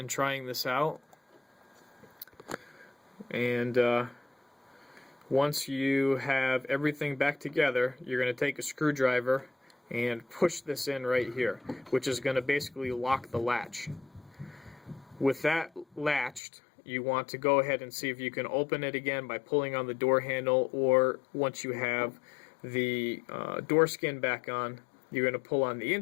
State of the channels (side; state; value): right; drops out; at 16.4 s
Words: trying this out, and once you have everything back together, you're going to take a screwdriver and push this in right here, which is going to basically lock the latch. With that latched, you want to go ahead and see if you can open it again by pulling on the door handle, or once you have the door skin back on, you're going to pull on the